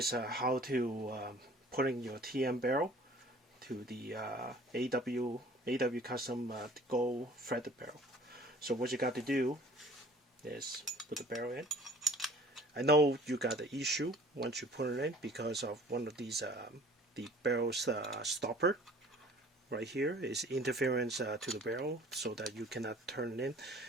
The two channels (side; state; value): both; normal; correlation 0.50